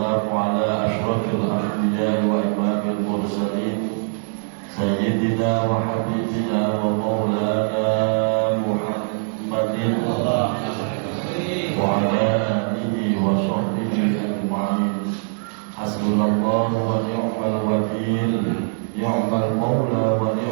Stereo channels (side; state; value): left; silent; digital silence